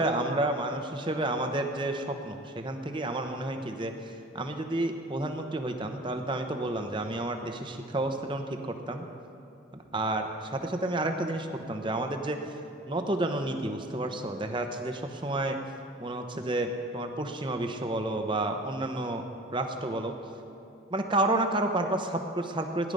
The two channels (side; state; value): both; normal; correlation 0.41